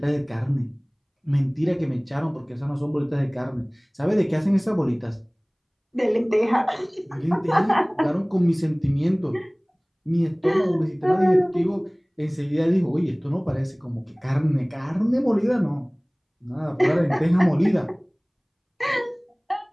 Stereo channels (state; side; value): identical; both; correlation 1.00